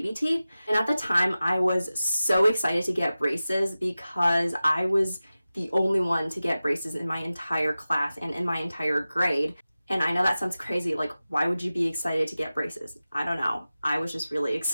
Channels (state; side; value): inverted; both; correlation -0.95